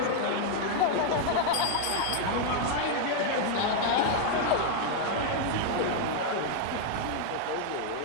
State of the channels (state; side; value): different; both; correlation 0.00